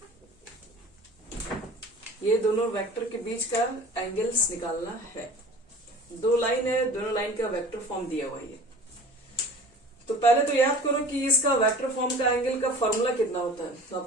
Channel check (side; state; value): both; normal; correlation 0.42